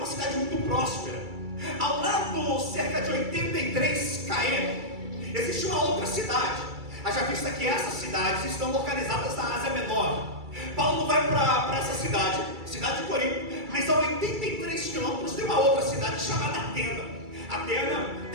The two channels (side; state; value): left; late; 2.3 ms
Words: cidade muito próspera. Ao lado, cerca de 83 km, existe uma outra cidade. Haja vista que essas cidades estão localizadas na Ásia Menor. Paulo vai para essa cidade de Corinto, mas a 83 quilômetros tem uma outra cidade chamada Atena. Atena